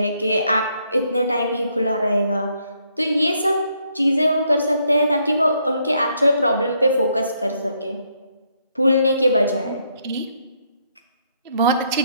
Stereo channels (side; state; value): both; inverted; correlation -0.73